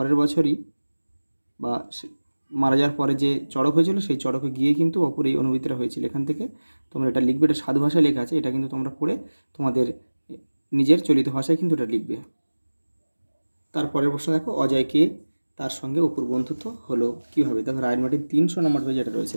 বছরই বা মারা যাওয়ার পরে যে চড়ক হয়েছিল সেই চড়কে গিয়ে কিন্তু অপুর এই অনুভূতিটা হয়েছিল। এখান থেকে তোমরা এটা লিখবে, এটা সাধু ভাষায় লেখা আছে, এটা কিন্তু তোমরা পড়ে তোমাদের নিজের চলিত ভাষায় কিন্তু এটা লিখবে। তারপরের প্রশ্ন দেখো, অজয়কে তার সঙ্গে অপুর বন্ধুত্ব হলো কীভাবে? দেখো রাইট মার্টিন 300 নম্বর পেজে এটা রয়েছে।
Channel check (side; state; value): both; inverted; correlation -1.00